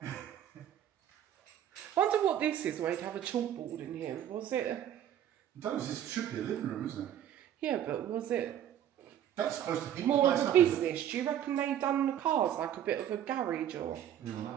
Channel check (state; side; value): quieter; left; 10.5 dB